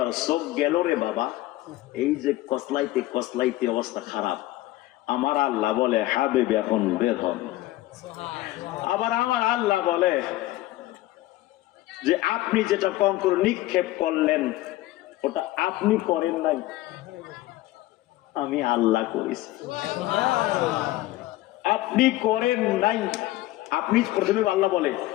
চোখ গেল রে বাবা, এই যে কসলাইতে কসলাইতে অবস্থা খারাপ, আমার আল্লাহ বলে হাবিব এখন বের হন। আবার আমার আল্লাহ বলে যে আপনি যেটা কঙ্কর নিক্ষেপ করলেন ওটা আপনি করেন নাই, আমি আল্লাহ করেছি। আপনি করেন নাই, আপনি প্রথমে আল্লাহ বলে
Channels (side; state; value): right; quieter; 16.7 dB